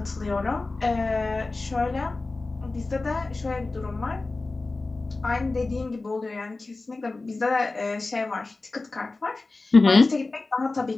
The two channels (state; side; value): quieter; right; 3.4 dB